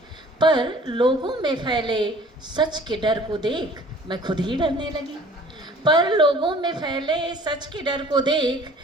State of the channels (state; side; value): normal; both; correlation 0.51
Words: पर लोगों में फैले सच के डर को देख मैं खुद ही डरने लगी। पर लोगों में फैले सच के डर को देख